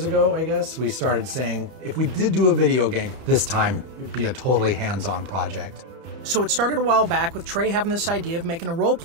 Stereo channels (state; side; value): late; left; 30 ms